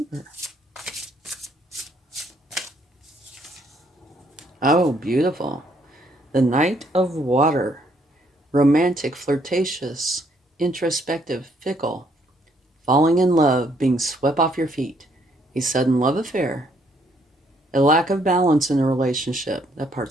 Oh, beautiful. The Knight of Water. Romantic, flirtatious, introspective, fickle. Falling in love, being swept off your feet. A sudden love affair. A lack of balance in a relationship. That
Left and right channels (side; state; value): both; normal; correlation 0.68